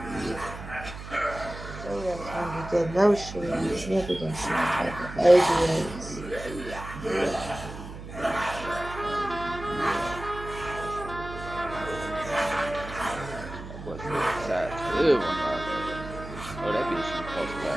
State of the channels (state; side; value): noise; right; hum, 11 dB below the sound